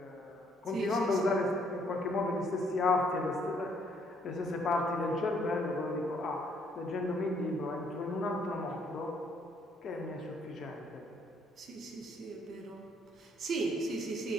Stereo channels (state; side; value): normal; both; correlation 0.67